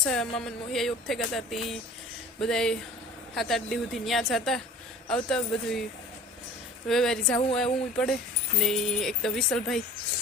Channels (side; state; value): both; normal; correlation 0.43